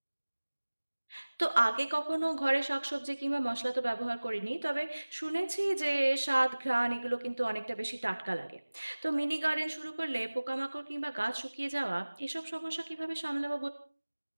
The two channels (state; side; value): inverted; both; correlation -1.00